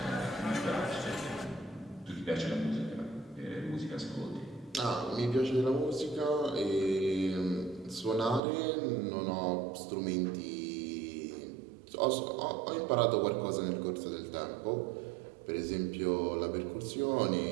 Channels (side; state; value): left; drops out; at 8.4 s